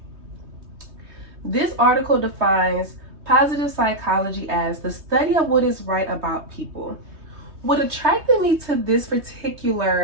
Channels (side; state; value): left; late; 3.2 ms